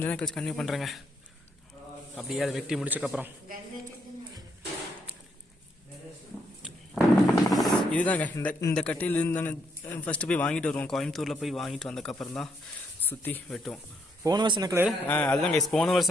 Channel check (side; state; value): both; normal; correlation 0.74